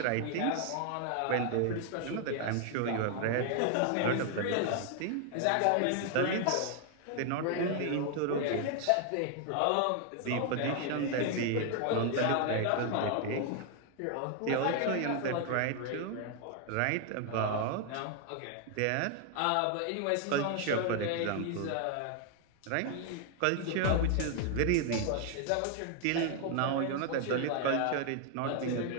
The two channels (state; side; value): different; both; correlation 0.00